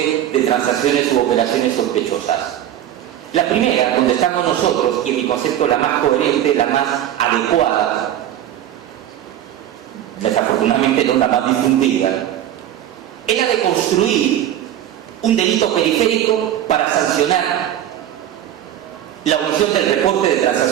de transacciones u operaciones sospechosas. La primera, donde estamos nosotros, y en mi concepto la más coherente, la más adecuada, desafortunadamente no la más difundida, es la de construir un delito periférico para sancionar la omisión del reporte de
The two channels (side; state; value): left; quieter; 11.6 dB